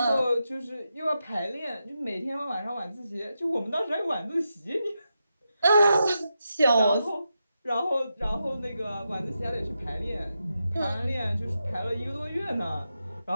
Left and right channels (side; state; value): both; inverted; correlation -0.87